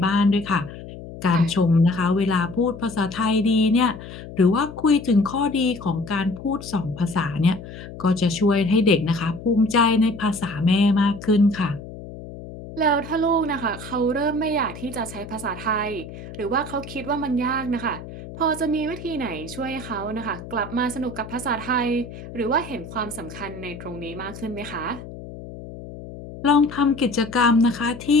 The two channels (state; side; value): noise; left; hum, 13 dB below the sound